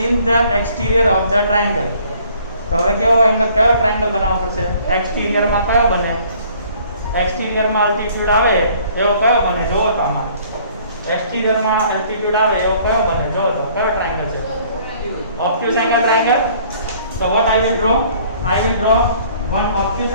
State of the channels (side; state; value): both; inverted; correlation -0.57